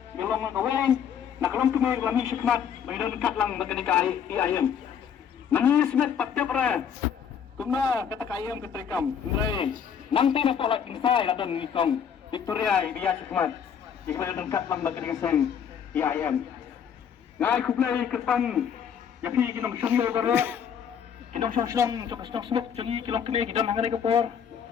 belum ngaweng. Nak kelom kemai kami syukmat bagi dekat lang bagi kai ayam. Nangis met patya pra kuma kata kayam ketrikam ndrai nanti na pola kingsai adon ngikong Victoria biya sikmat ikma dengkat lang baga dengan ayam ngai kuplai kerpang yapi kinong shongyo bara kinong shong jok smuk jongi kilong kene kidam hangare kapor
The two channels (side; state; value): right; quieter; 7.9 dB